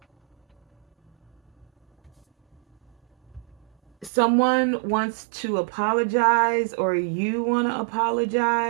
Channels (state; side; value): drops out; left; at 4.1 s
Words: someone wants to apologize or you want to